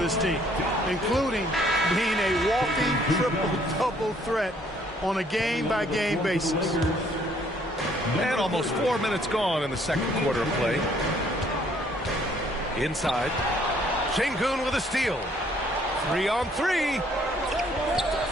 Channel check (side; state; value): both; normal; correlation 0.63